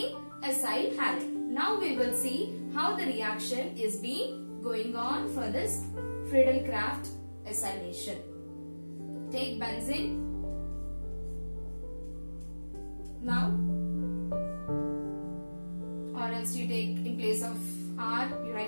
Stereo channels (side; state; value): both; inverted; correlation -1.00